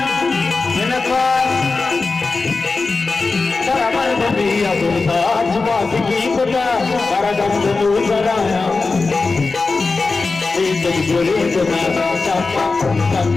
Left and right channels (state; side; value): quieter; right; 4.0 dB